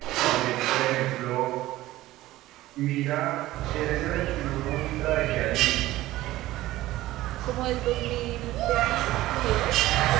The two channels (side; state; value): left; quieter; 16.4 dB